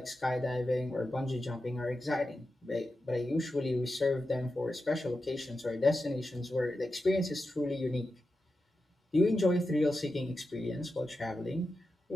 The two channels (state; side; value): normal; both; correlation 0.90